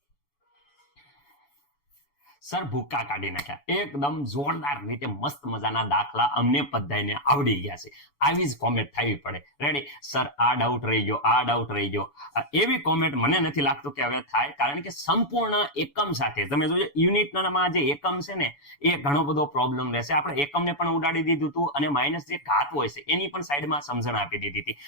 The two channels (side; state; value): right; late; 7.0 ms